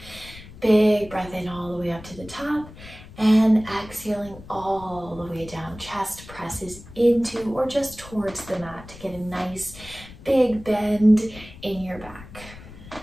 Big big breath in all the way up to the top, and exhaling all the way down. Chest presses into or just towards the mat to get a nice big bend in your back.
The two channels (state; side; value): noise; left; rumble, 17 dB below the sound